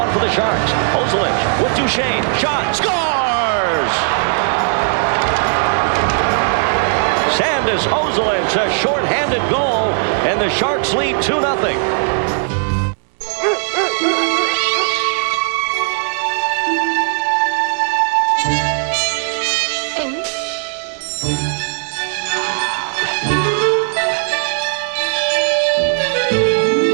for the Sharks. Ozelich with Duchesne. Shot. Scores! Sandis Ozelich, a short-handed goal, and the Sharks lead 2-0.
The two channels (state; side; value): silent; left; digital silence